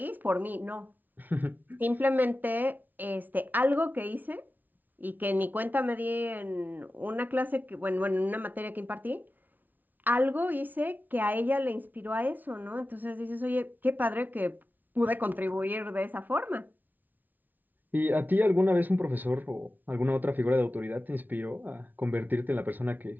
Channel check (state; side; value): late; left; 0.083 ms